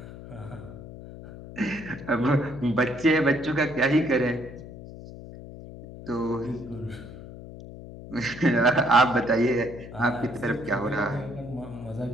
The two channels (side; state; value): left; noise; hum, 14 dB below the sound